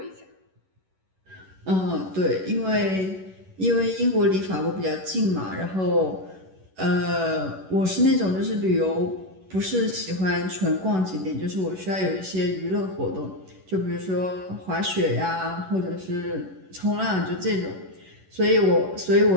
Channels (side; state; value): left; late; 11 ms